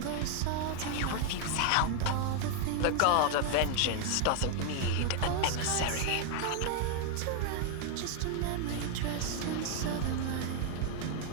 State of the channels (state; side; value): different; both; correlation 0.00